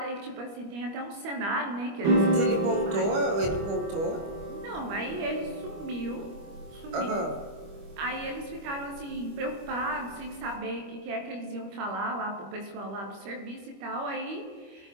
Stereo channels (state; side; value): late; left; 25 ms